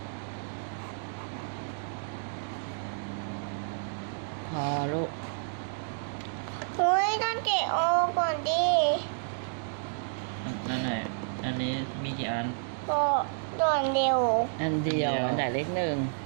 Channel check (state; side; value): silent; left; digital silence